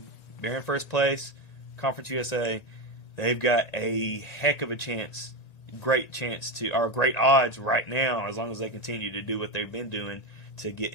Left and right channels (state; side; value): late; right; 1.9 ms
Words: in first place. Conference USA, they've got a heck of a chance, great odds right now, as long as they continue to do what they've been doing, to get